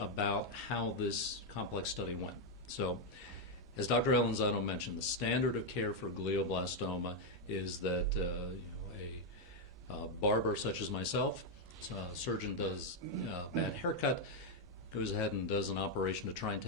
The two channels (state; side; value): normal; both; correlation 0.01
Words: how this complex study went. So, as Dr. Alanzano mentioned, the standard of care for glioblastoma is that a barber such as myself, a surgeon does a bad haircut, goes ahead and does an operation to try and